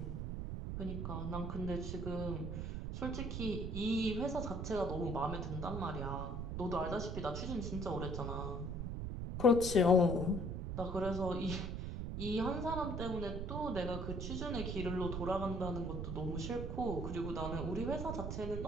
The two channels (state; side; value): noise; right; rumble, 3 dB below the sound